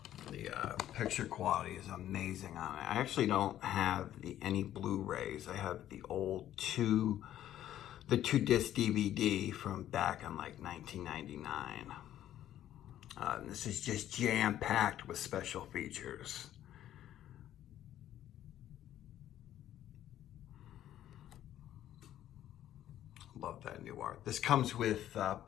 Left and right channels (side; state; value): right; quieter; 12.0 dB